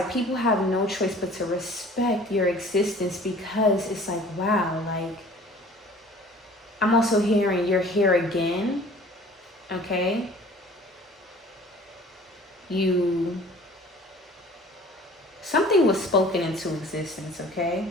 people have no choice but to respect your existence because it's like, wow, like, I'm also hearing you're here again, okay? Something was spoken into existence, okay?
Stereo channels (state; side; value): normal; both; correlation 0.48